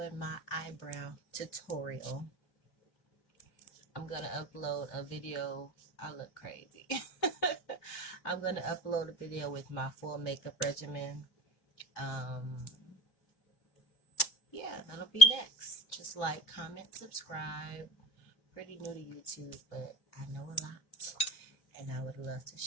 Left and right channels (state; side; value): late; right; 3.1 ms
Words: my eyebrow tutorial. I'm going to upload a video. I look crazy. I'm going to upload a video with my full makeup regimen. Um, yeah, that'll be next. Just like, comment, subscribe. Pretty new to YouTube, but I know a lot, and I would love to